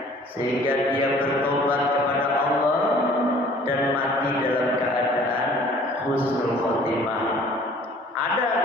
sehingga dia bertobat kepada Allah dan mati dalam keadaan husnul khotimah. Ada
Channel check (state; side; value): normal; both; correlation 0.52